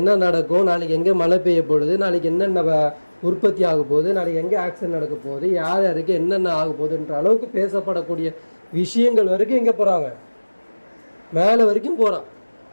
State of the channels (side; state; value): both; inverted; correlation -1.00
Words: என்ன நடக்கும், நாளைக்கு எங்கே மழை பெய்ய போகுது, நாளைக்கு என்னென்ன உற்பத்தி ஆக போகுது, நாளைக்கு எங்கே ஆக்சிடென்ட் நடக்க போகுது, யார் யாருக்கு என்னென்ன ஆக போகுதுன்ற அளவுக்கு பேசப்படக்கூடிய விஷயங்கள் வரைக்கும் எங்கே போகிறாங்க? மேலே வரைக்கும் போகிறான்.